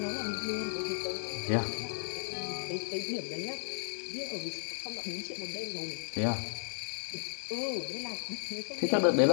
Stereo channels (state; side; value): silent; right; digital silence